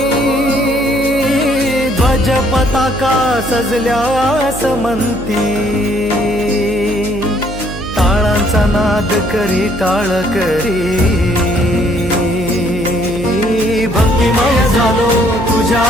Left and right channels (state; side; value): noise; right; hum, 12 dB below the sound